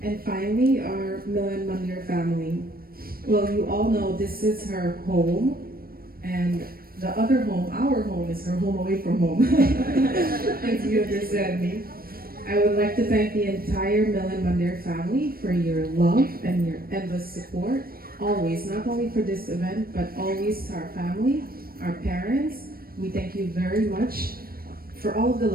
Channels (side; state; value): left; late; 0.43 ms